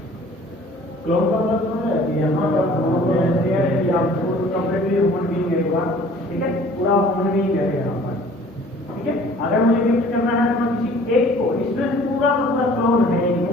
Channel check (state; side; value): normal; both; correlation 0.51